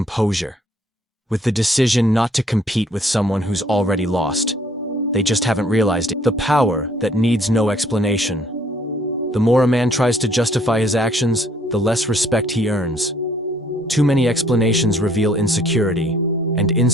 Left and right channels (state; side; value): normal; both; correlation 0.62